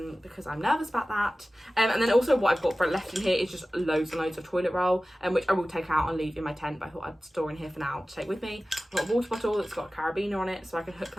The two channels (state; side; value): normal; both; correlation 0.96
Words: because I'm nervous about that. And then also what I've got for left in here is just loads and loads of toilet roll, which I will take out and leave in my tent, but I thought I'd store in here for now to take with me. I've got a water bottle that's got a carabiner on it, so I can hook